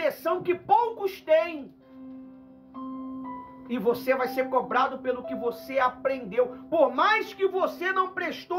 que poucos têm. E você vai ser cobrado pelo que você aprendeu. Por mais que você não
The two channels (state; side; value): identical; both; correlation 1.00